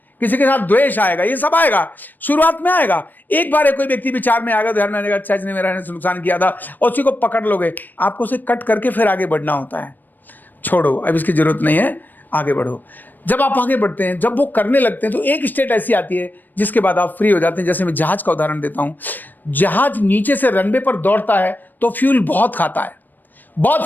किसी के साथ द्वेष आएगा, ये सब आएगा, शुरुआत में आएगा। एक बार कोई व्यक्ति विचार में आएगा, ध्यान में आएगा, अच्छा इसने मेरा नुकसान किया था, और उसी को पकड़ लोगे, आपको उसे कट करके फिर आगे बढ़ना होता है। छोड़ो, अब इसकी जरूरत नहीं है, आगे बढ़ो। जब आप आगे बढ़ते हैं, जब वो करने लगते हैं, तो एक स्टेट ऐसी आती है जिसके बाद आप फ्री हो जाते हैं। जैसे मैं जहाज का उदाहरण देता हूं। जहाज नीचे से रनवे पर दौड़ता है तो फ्यूल बहुत खाता है, बहुत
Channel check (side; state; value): right; late; 0.090 ms